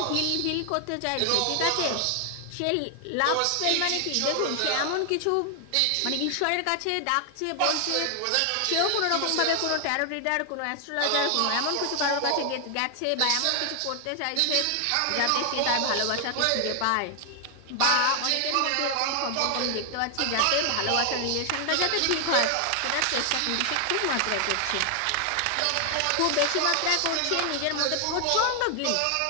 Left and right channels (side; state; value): both; different; correlation 0.00